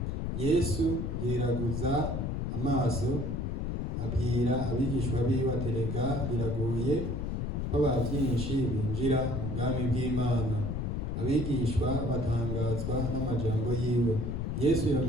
Yesu yeraguza amaso, abwira abigishwa biwe ati, erega biragoye ko abantu byinshi binjira mu bwami bw'Imana. Abigishwa batangazwa n'amajambo yiwe. Yesu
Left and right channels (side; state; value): left; noise; rumble, 1 dB below the sound